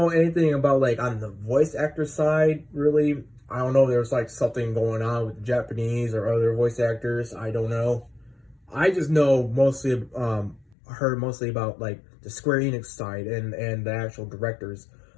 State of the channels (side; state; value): right; drops out; at 10.8 s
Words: anything about, like, on the voice actor side, really. I don't know if there's, like, something going on with the Japanese or other voice actors. I don't know. I just know mostly, heard mostly about, like, the Square Enix side and the actual directors,